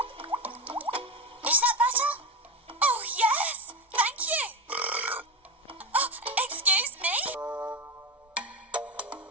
Is that better? Oh, yes! Thank you! Oh, excuse me?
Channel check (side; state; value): both; normal; correlation 0.18